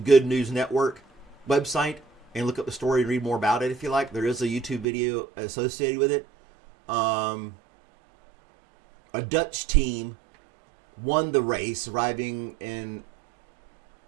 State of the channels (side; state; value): left; drops out; at 4.9 s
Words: News Network website and look up the story and read more about it if you like. There is a YouTube video associated with it. a Dutch team won the race, arriving in